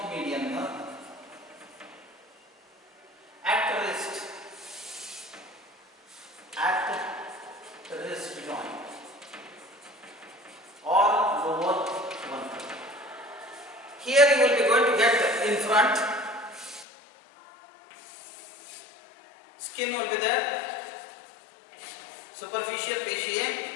median nerve at wrist joint or lower one. Here you will be going to get in front, skin will be there, superficial fascia,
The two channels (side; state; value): right; drops out; at 16.9 s